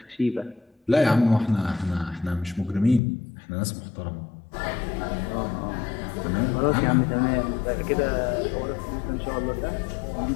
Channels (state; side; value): drops out; right; at 3.0 s